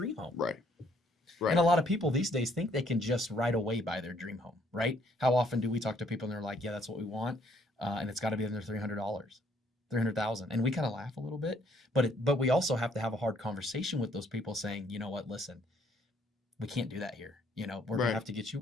home. Right. And a lot of people these days think they can just right away buy their dream home, right? How often do we talk to people and they're like, yeah, that's what we want. And it's got to be under $300, $300,000. And we kind of laugh a little bit, but we also have to have a hard conversation with those people saying, you know what, listen, we can't do that here. We're going to Right. have to get you,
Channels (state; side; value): normal; both; correlation 0.66